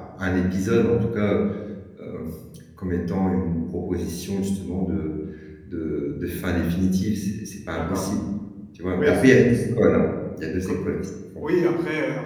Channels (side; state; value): both; identical; correlation 1.00